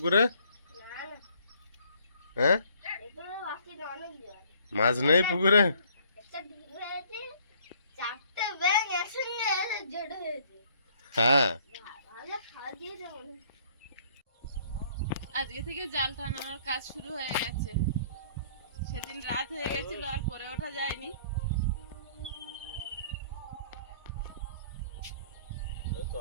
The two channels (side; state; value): both; inverted; correlation -0.60